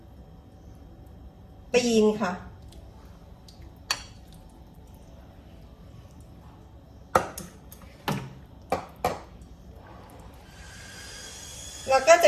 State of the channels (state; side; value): identical; both; correlation 1.00